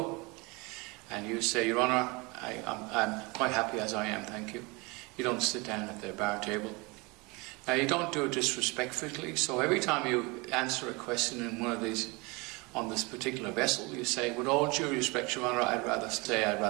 And you say, Your Honour, I'm quite happy as I am, thank you. You don't sit down at their bar table. Now, you don't do it disrespectfully, so every time you answer a question in one of these, on this particular vessel, you say, with all due respect, Your Honour, I'd rather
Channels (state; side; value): quieter; left; 26.7 dB